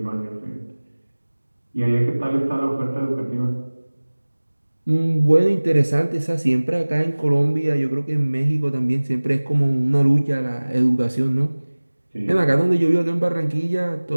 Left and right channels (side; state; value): both; inverted; correlation -1.00